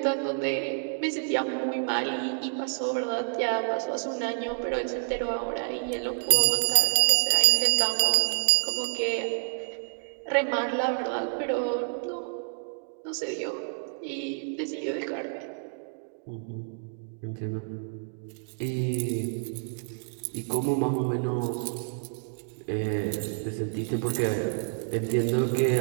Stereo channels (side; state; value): left; silent; digital silence